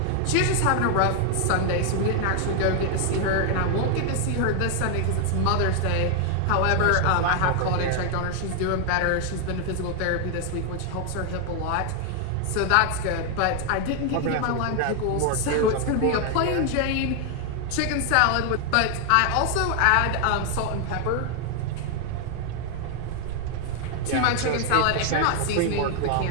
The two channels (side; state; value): both; different; correlation 0.00